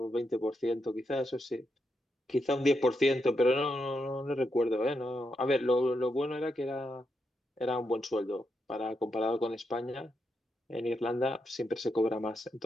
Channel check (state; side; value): normal; both; correlation 0.83